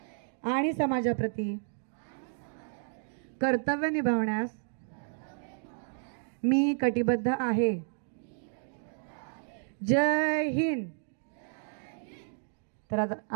आणि समाजाप्रती कर्तव्य निभावण्यास मी कटिबद्ध आहे. जय हिंद. तर आता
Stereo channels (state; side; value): silent; left; digital silence